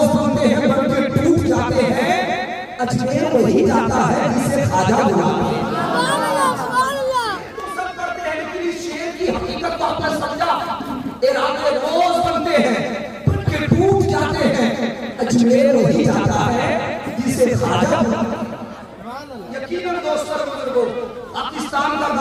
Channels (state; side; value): identical; both; correlation 1.00